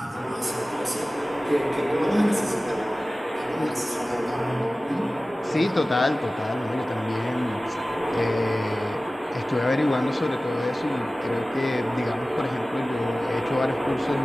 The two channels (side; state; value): both; normal; correlation 0.97